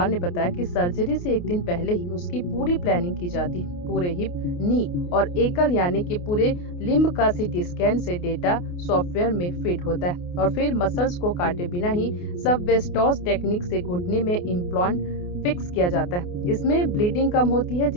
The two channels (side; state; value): right; late; 28 ms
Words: ने बताया कि सर्जरी से एक दिन पहले ही उसकी पूरी प्लानिंग की जाती है। पूरे हिप, नी और एकल यानी कि पूरे लिम्ब का सीटी स्कैन से डेटा सॉफ्टवेयर में फीड होता है और फिर मसल्स को काटे बिना ही सबवेस्टोस टेक्निक से घुटने में इम्प्लांट फिक्स किया जाता है। इसमें ब्लीडिंग कम होती है,